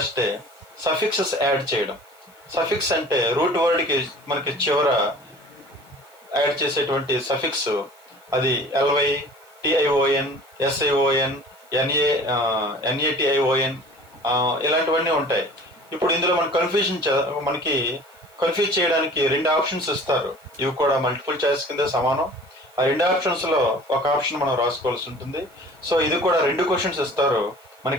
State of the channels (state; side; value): noise; right; hiss, 29 dB below the sound